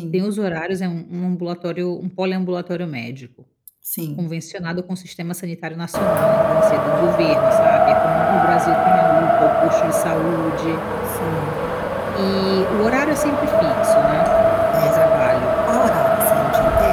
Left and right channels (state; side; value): identical; both; correlation 1.00